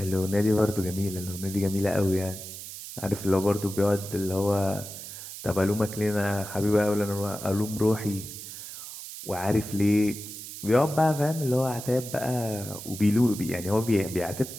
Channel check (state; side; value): noise; right; hiss, 11 dB below the sound